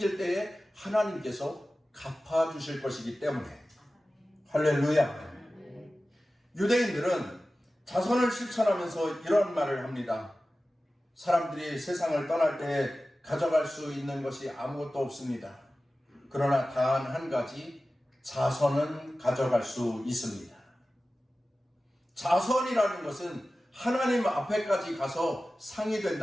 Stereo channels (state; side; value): normal; both; correlation 0.95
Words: 때에 하나님께서 갚아주실 것이기 때문에 할렐루야. 유대인들은 자선을 실천하면서 이런 말을 합니다. 사람들이 세상을 떠날 때 가져갈 수 있는 것이 아무것도 없습니다. 그러나 단 한 가지, 자선은 가져갈 수 있습니다. 자선이라는 것은 하나님 앞에까지 가서 상이